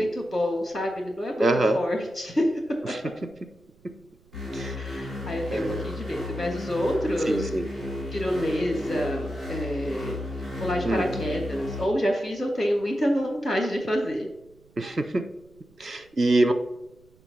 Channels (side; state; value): right; noise; rumble, 29 dB below the sound